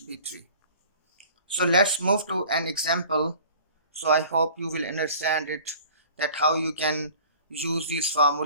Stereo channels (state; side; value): inverted; both; correlation -0.46